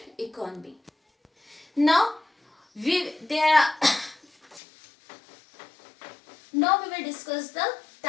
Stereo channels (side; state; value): right; drops out; at 4.6 s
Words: economy. Now we will discuss the